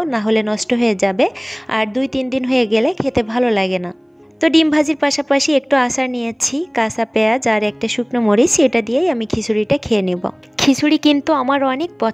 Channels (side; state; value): both; identical; correlation 1.00